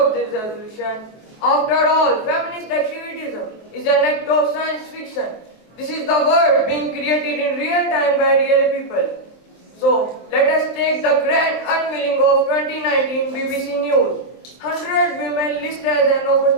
this resolution. After all, feminist activism is an act of science fiction. This is the world being created in real time by real people. So, let us take the grand unveiling of 2019 BBC News. 100 women listed as an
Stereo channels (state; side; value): late; right; 23 ms